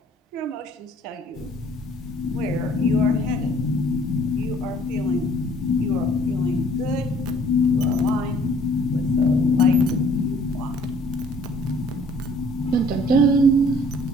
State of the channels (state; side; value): normal; both; correlation 0.57